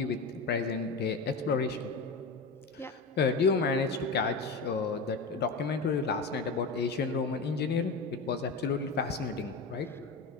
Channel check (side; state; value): right; quieter; 3.9 dB